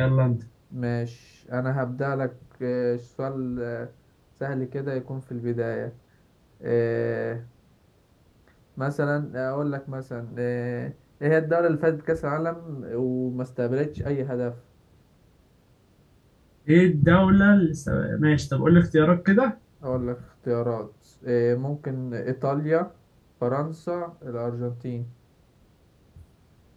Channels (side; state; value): both; identical; correlation 1.00